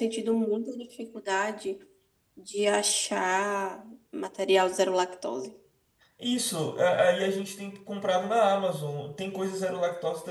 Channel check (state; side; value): identical; both; correlation 1.00